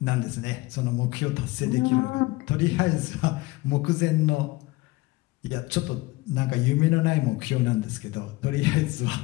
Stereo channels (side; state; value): right; quieter; 20.8 dB